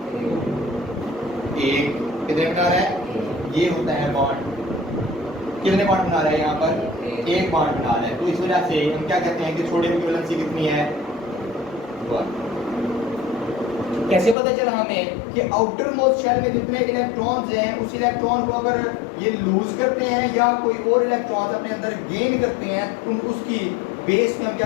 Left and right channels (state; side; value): drops out; right; at 14.4 s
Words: एक। कितने बना रहा है? ये होता है बॉन्ड। कितने बॉन्ड बना रहा है यहाँ पर? एक बॉन्ड बना रहा है। तो इस वजह से हम क्या कहते हैं कि सोडियम की वैलेंसी कितनी है? 1। कैसे पता चला हमें कि आउटर मोस्ट शेल में जितने इलेक्ट्रॉन्स हैं, उस इलेक्ट्रॉन को अगर ये लूज करते हैं या कोई और इलेक्ट्रॉन्स अपने अंदर गेन करते हैं, तो उसकी बेस में हम